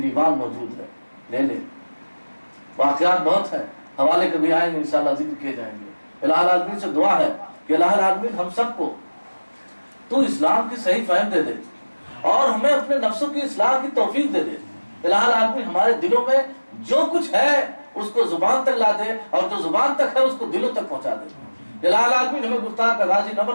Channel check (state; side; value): inverted; both; correlation -1.00